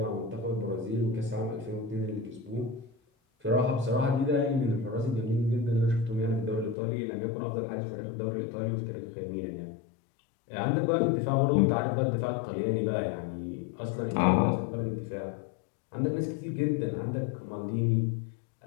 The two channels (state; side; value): drops out; right; at 6.8 s